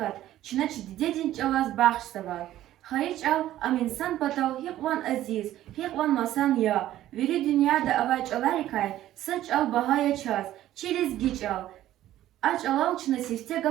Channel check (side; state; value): left; quieter; 13.5 dB